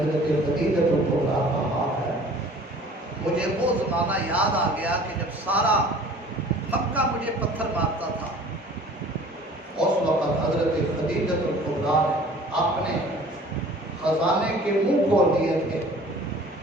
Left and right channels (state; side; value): normal; both; correlation 0.48